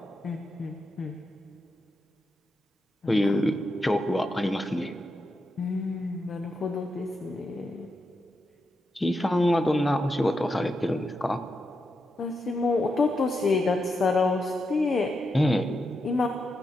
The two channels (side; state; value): both; normal; correlation 0.85